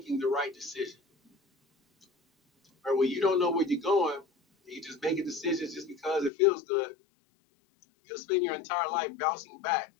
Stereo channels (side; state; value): right; drops out; at 6.3 s